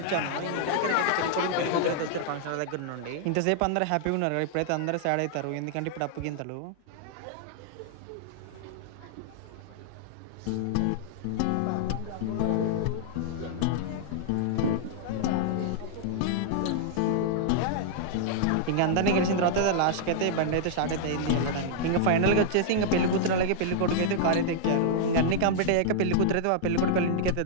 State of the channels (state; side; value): different; both; correlation -0.01